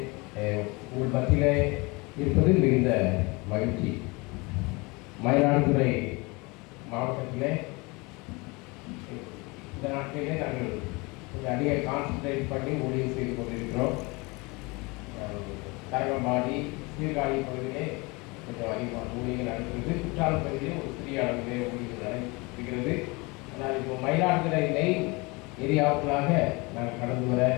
உங்கள் மத்தியிலே இருப்பது மிகுந்த மகிழ்ச்சி. மயிலாடுதுறை மாவட்டத்திலே இந்த நாட்டிலே நாங்கள் கொஞ்சம் அதிக கான்சன்ட்ரேட் பண்ணி ஊழியம் செய்து கொண்டிருக்கிறோம். தரங்கம்பாடி சீர்காழி பகுதியிலே கொஞ்சம் அதிகமாக ஊழியர்கள் நடக்கிறது. குற்றாலம் பகுதியிலே ஒரு சிறிய அளவிலே ஊழியர்கள் நடைபெறுகிறது. ஆனால் இப்போ மயிலாடுதுறை மெயின் ஏரியாவுக்குள்ளாக நான் கடந்து வர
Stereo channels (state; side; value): quieter; right; 26.3 dB